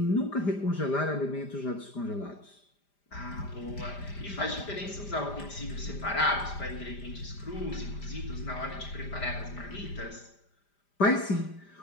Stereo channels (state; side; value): late; right; 5.0 ms